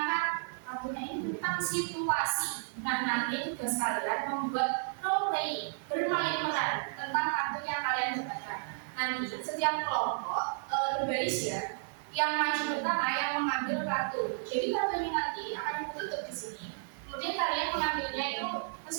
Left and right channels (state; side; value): silent; left; 56 dB below the other